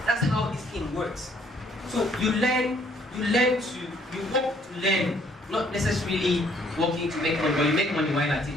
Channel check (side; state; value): both; normal; correlation 0.64